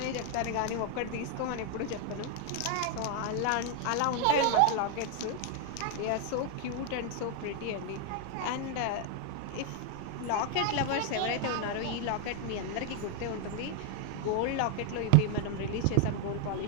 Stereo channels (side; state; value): both; different; correlation 0.00